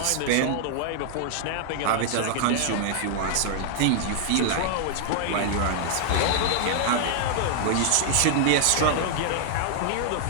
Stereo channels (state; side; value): different; both; correlation 0.00